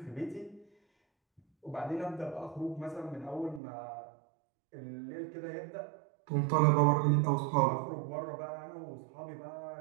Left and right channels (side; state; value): left; drops out; at 3.6 s